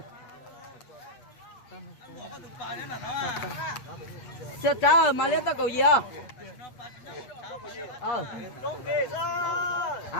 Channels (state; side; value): late; right; 8.4 ms